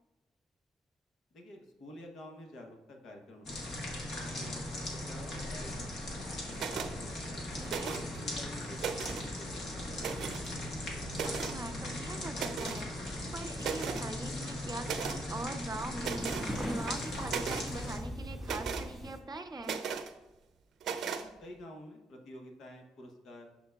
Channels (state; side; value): normal; both; correlation 0.69